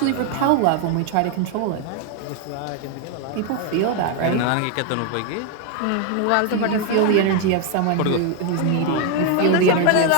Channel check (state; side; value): different; both; correlation 0.01